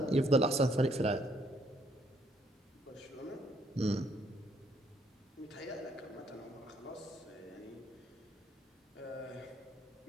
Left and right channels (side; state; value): both; normal; correlation 0.69